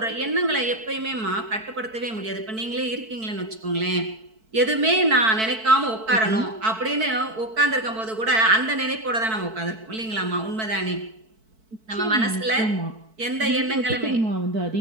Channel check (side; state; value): left; late; 4.5 ms